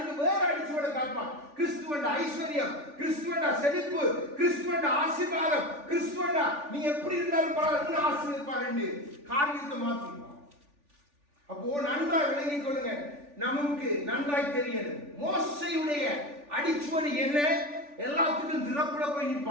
வேற அடிச்சுவட காட்பான். கிறிஸ்துவண்ட ஐஸ்வர்யம், கிறிஸ்துவண்ட செழிப்பு, கிறிஸ்துவண்ட ஆசீர்வாதம், கிறிஸ்துவண்ட நீ எப்படி இருந்தாலும் பரவாயில்ல ஆசீர்வதிப்பார் என்று காரியத்தை மாற்றிடுவான். அப்போ நன்றாய் விளங்கிக் கொள்ளுங்க. நமக்கு நன்றாய் தெரியணும் மோசையுடைய அடிச்சுவடு என்ன. எல்லாத்துக்கும் திறப்புல போய்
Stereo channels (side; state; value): left; late; 3.4 ms